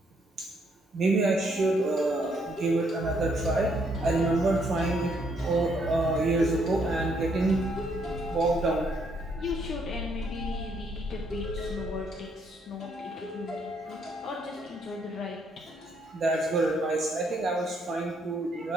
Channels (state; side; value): normal; both; correlation 0.71